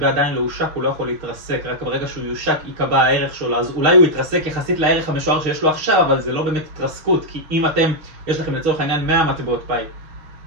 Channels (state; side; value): late; left; 6.5 ms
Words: עדיין לא הושק, הוא לא יכול להתרסק, רק ברגע שהוא יושק יקבע הערך שלו, אז אולי הוא יתרסק יחסית לערך המשוער שיש לו עכשיו, אבל זה לא באמת התרסקות, כי אם יש לכם לצורך העניין 100 מטבעות פאי,